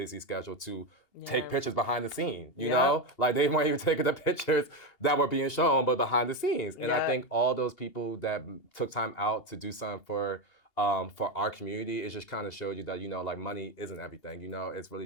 schedule to take pictures behind the scenes, you know? Like they weren't even taking the pictures that were being shown, but behind the scenes. And I think all those people that took time out to do something for our community, it just kind of showed you that, you know, like money isn't everything, you know? It's really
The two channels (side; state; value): right; late; 2.8 ms